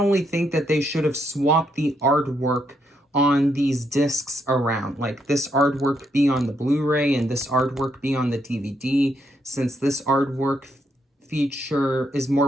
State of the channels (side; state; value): both; normal; correlation 0.77